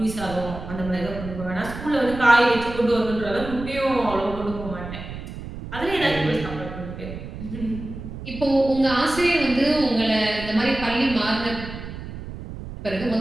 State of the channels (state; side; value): noise; right; rumble, 10 dB below the sound